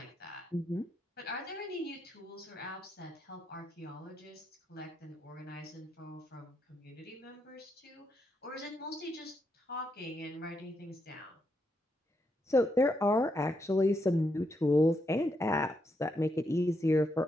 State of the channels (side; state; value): both; normal; correlation 0.80